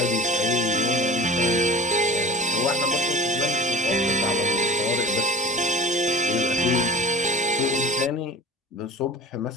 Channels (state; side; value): normal; both; correlation 0.37